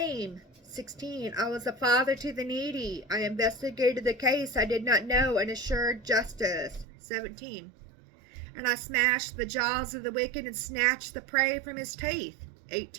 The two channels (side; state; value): left; drops out; at 6.9 s